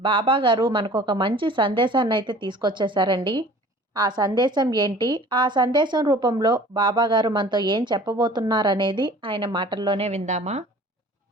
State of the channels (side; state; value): both; normal; correlation 0.47